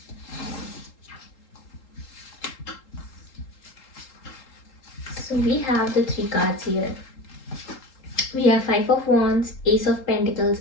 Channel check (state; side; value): late; right; 3.8 ms